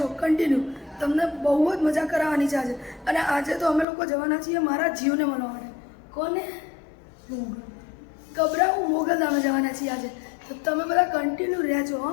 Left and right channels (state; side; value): drops out; right; at 3.9 s